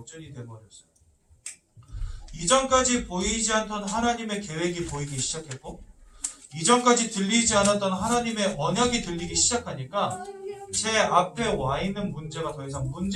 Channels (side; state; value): both; identical; correlation 1.00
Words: 되어버렸어요. 이전까지 보이지 않던 하나님의 계획이 보이기 시작했고, 이전까지 들리지 않았던 하나님의 언약이 들리기 시작하니까 제 앞에 와 있는 문제가 더 이상